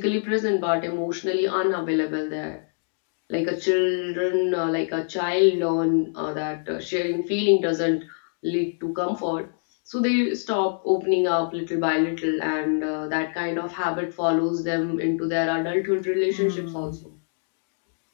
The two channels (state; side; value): silent; right; digital silence